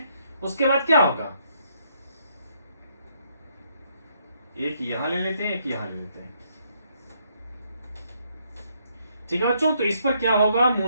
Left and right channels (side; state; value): both; inverted; correlation -0.72